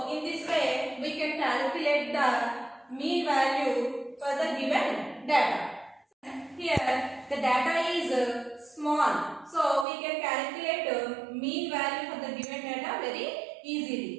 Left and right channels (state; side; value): drops out; left; at 9.9 s